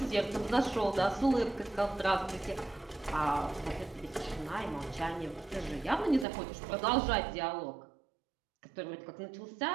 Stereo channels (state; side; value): drops out; left; at 6.2 s